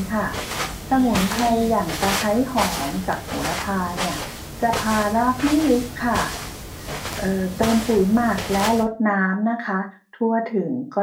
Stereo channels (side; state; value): both; identical; correlation 1.00